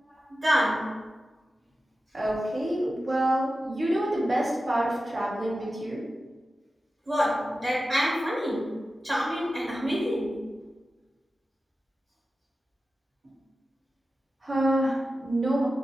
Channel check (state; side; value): normal; both; correlation 0.93